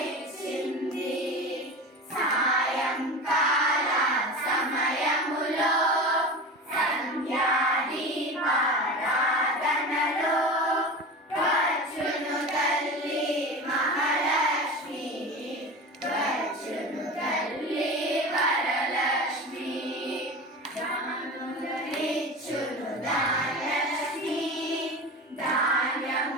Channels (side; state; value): both; normal; correlation 0.30